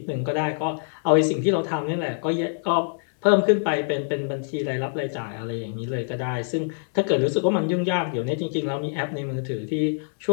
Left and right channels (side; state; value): right; silent; digital silence